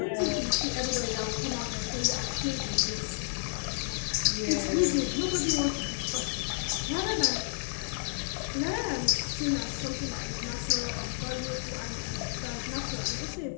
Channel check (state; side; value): silent; right; digital silence